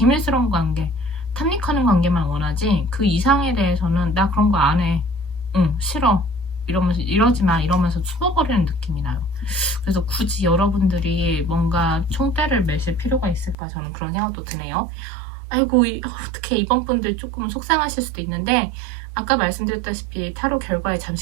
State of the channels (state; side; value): drops out; left; at 13.6 s